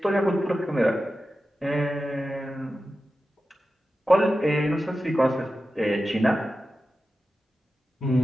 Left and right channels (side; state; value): both; normal; correlation 0.93